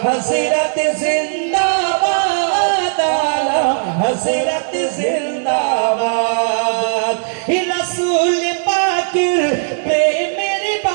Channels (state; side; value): silent; left; digital silence